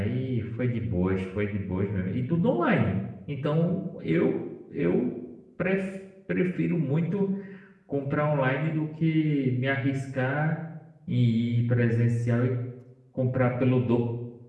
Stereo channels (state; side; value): identical; both; correlation 1.00